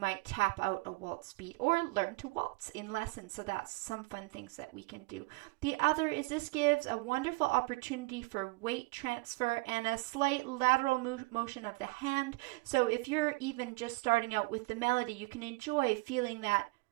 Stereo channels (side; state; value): left; quieter; 26.3 dB